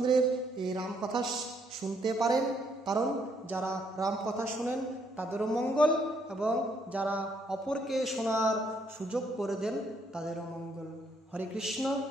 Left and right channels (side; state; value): both; normal; correlation 0.71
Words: এই রামকথা শুনতে পারেন। কারণ যারা রামকথা শুনেন তাদেরও মঙ্গল, এবং যারা অপরকে শোনার সুযোগ করে দেন তাদেরও মঙ্গল। হরে কৃষ্ণ।